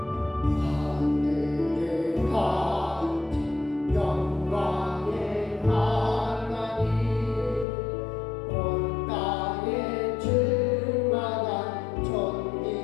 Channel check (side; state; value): right; drops out; at 7.7 s